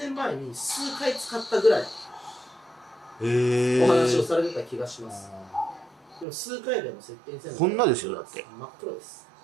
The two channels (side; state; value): left; drops out; at 6.2 s